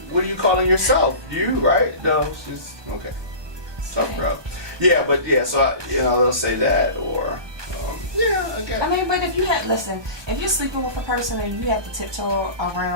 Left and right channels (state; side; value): late; left; 1.2 ms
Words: are you calling yourself? You, right? No, she's, okay. Tough girl. Yeah, but yeah, so, they'll say that or... again. I mean, but if you're sleeping with a person and you have to tiptoe